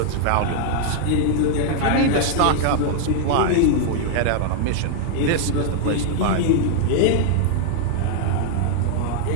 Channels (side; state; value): both; different; correlation 0.00